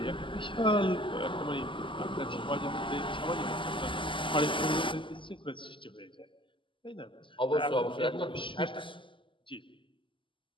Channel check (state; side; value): late; right; 0.25 ms